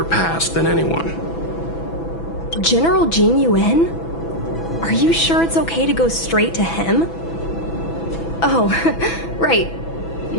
past than anyone. General Jing Yuan? Are you sure it's okay to go straight to him? Oh, right.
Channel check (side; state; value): right; late; 6.0 ms